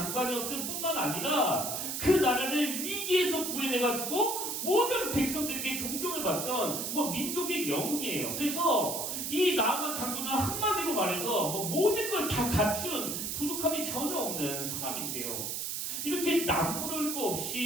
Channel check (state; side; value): noise; right; hiss, 3 dB below the sound